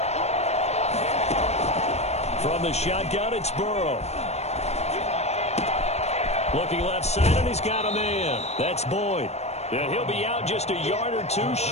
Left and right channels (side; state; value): right; late; 0.31 ms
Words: From the shotgun, it's Burrow. Looking left side, and he's got a man. That's Boyd. Yeah, he'll be out just a yard or 2